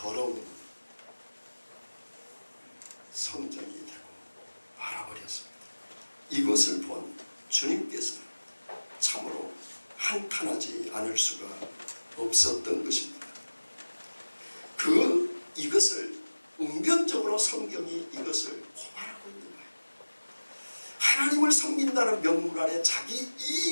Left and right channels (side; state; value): both; inverted; correlation -1.00